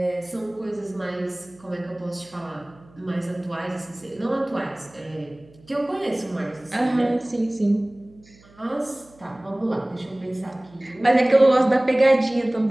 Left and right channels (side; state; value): right; noise; hum, 27 dB below the sound